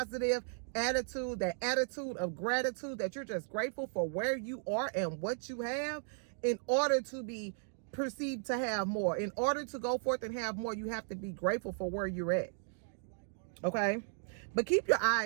attitude, that attitude of gratitude, that you're just grateful for where you are and what you have, in order to be perceived to have more. In order to go forth and have more, you have to be grateful for where you're at. Okay? But keep your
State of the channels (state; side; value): silent; left; digital silence